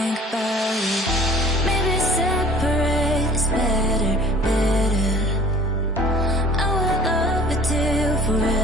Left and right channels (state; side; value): normal; both; correlation 0.48